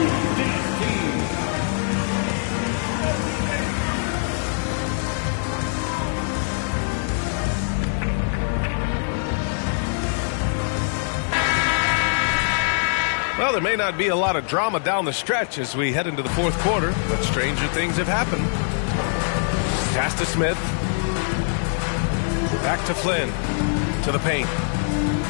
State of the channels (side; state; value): right; silent; digital silence